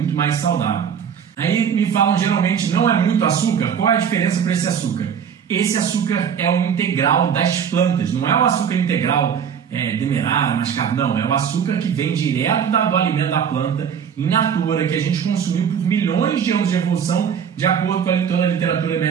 mais saudável. Aí me falam geralmente, não é muito açúcar? Qual é a diferença para esse açúcar? Esse açúcar é o integral das plantas, não é o açúcar integral demerara, mascavo, não. É o açúcar que vem direto do alimento da planta, in natura, que a gente consumiu por milhões de anos de evolução, de acordo com toda a literatura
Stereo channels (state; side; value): quieter; left; 7.7 dB